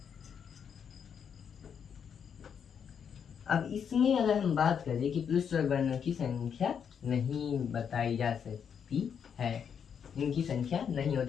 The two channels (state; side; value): quieter; right; 7.5 dB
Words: अब इसमें अगर हम बात करें कि प्लुत स्वर वर्णों की संख्या नहीं बताई जा सकती है, इनकी संख्या नहीं